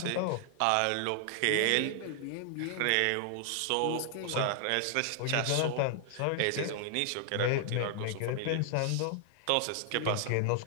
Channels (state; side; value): different; both; correlation 0.00